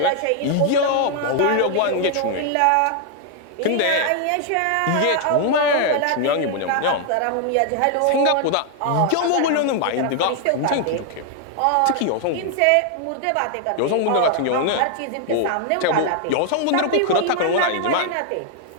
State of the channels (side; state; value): both; different; correlation 0.00